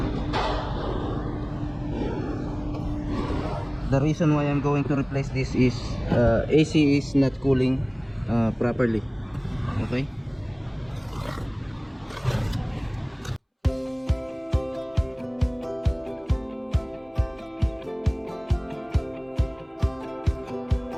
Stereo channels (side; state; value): both; identical; correlation 1.00